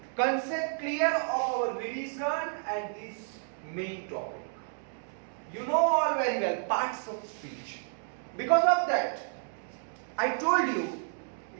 concept clear of our revision and this main topic. You know all very well parts of speech. Because of that, I told you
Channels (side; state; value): left; silent; 57 dB below the other